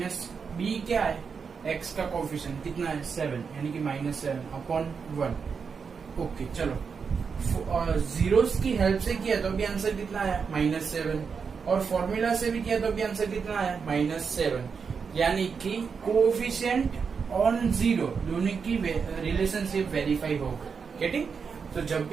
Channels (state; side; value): quieter; left; 5.8 dB